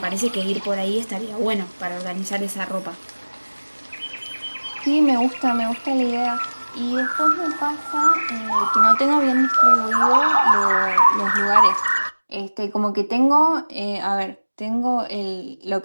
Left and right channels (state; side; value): inverted; both; correlation -1.00